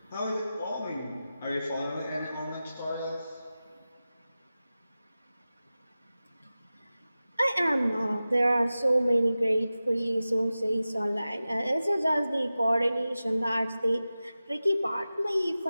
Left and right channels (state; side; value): inverted; both; correlation -0.95